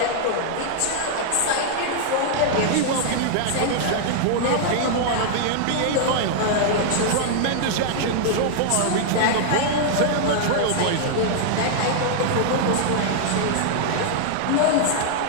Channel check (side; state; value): both; different; correlation -0.01